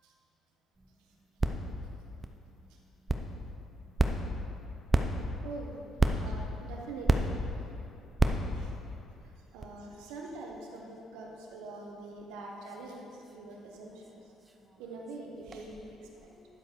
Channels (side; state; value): both; normal; correlation 0.86